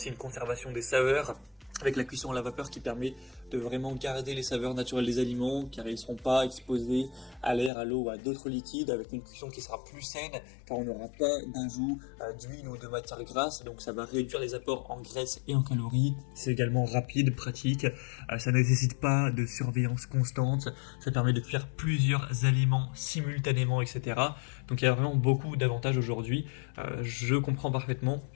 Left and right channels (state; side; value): drops out; right; at 7.7 s